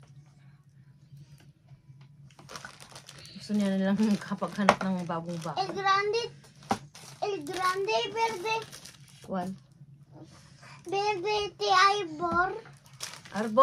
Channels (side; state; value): both; identical; correlation 1.00